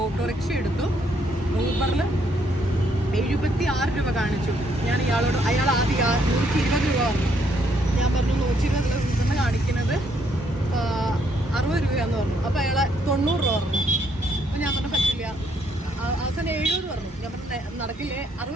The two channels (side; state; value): both; normal; correlation 0.71